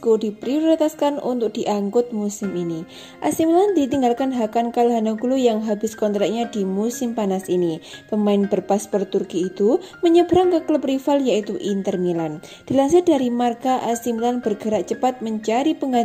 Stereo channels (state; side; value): identical; both; correlation 1.00